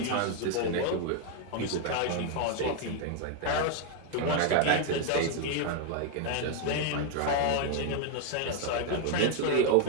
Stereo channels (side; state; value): both; different; correlation 0.01